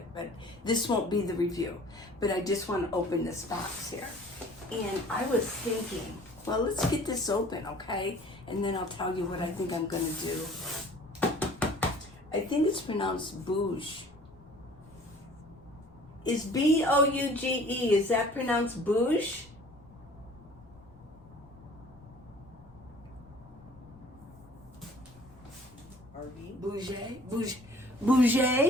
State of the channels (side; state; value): left; noise; rumble, 24 dB below the sound